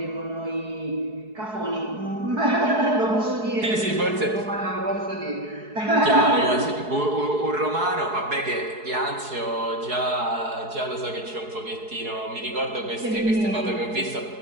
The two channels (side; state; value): left; late; 4.7 ms